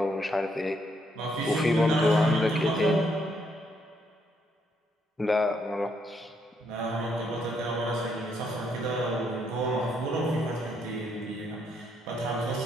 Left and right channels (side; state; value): both; normal; correlation 0.74